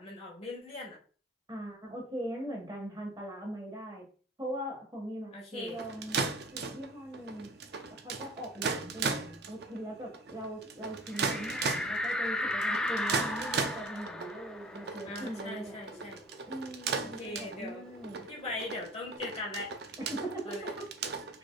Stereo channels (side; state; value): both; normal; correlation 0.43